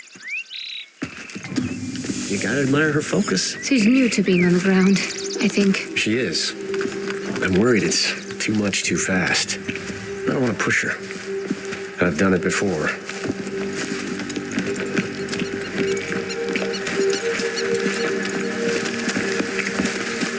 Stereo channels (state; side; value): identical; both; correlation 1.00